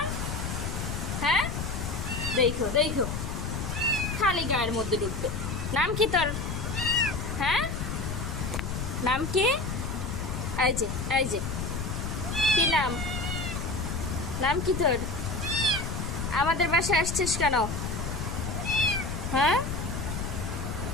হ্যাঁ, দেখো দেখো, খালি গায়ের মধ্যে ঢুকবে। নাম কি তোর? হ্যাঁ, নাম কি? এই যে, এই যে, কি নাম? নাম কি তোর? আমাদের বাসায় আসছিস কেন? হ্যাঁ,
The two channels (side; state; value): left; noise; rumble, 3 dB below the sound